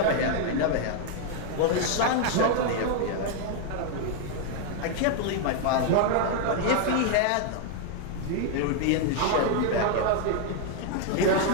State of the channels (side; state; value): both; different; correlation 0.00